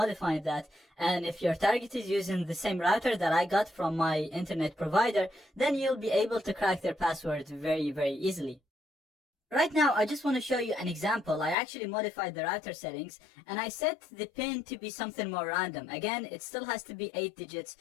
that. And if your target is using the same router that I got from my internet provider, then you'll be able to crack their password very, very easily. Right now, I just want to show you an example. I actually modified the router settings and I set the pin to be something more random. Again, it still has to be 8 digits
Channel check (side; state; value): right; drops out; at 11.6 s